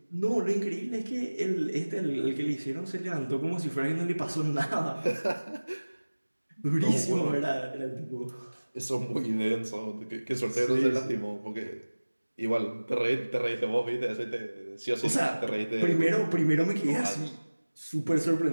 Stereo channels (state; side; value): inverted; both; correlation -1.00